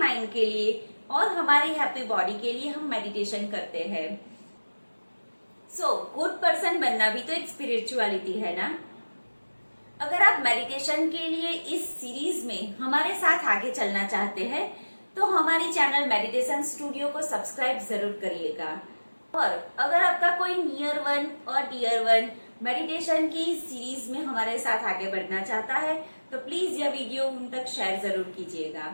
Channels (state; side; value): inverted; both; correlation -1.00